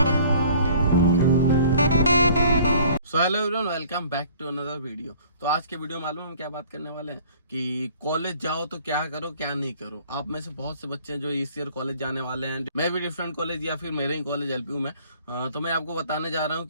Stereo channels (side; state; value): both; inverted; correlation -0.53